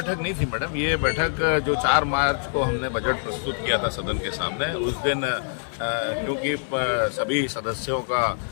नहीं थी मैडम, ये बैठक जो 4 मार्च को हमने बजट प्रस्तुत किया था सदन के सामने, उस दिन क्योंकि सभी सदस्यों का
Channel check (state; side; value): silent; right; digital silence